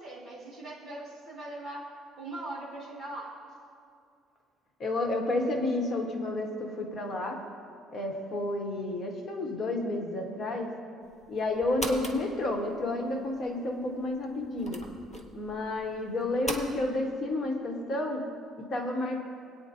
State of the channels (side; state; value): both; normal; correlation 0.63